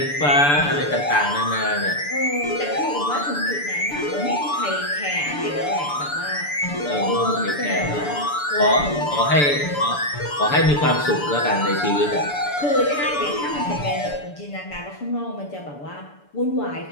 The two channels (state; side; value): late; right; 6.9 ms